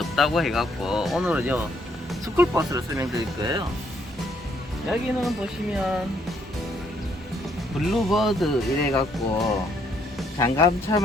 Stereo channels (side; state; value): both; normal; correlation 0.69